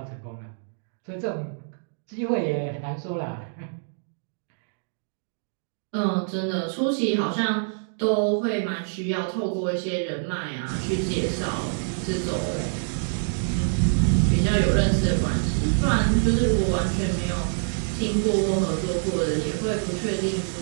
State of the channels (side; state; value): left; silent; digital silence